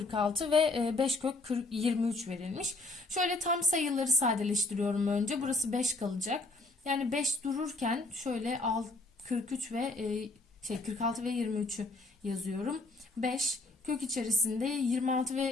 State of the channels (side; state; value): right; quieter; 3.2 dB